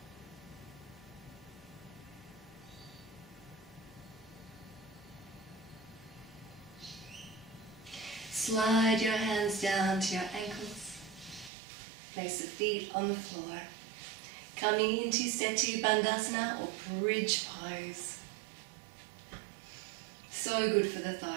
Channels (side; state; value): left; drops out; at 11.5 s